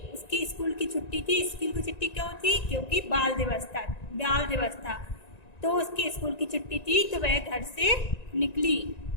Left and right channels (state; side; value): late; right; 1.9 ms